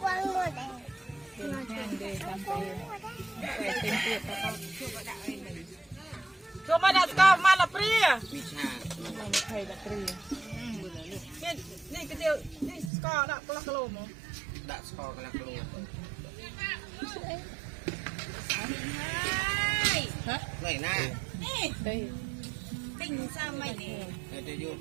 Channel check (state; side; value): drops out; left; at 12.9 s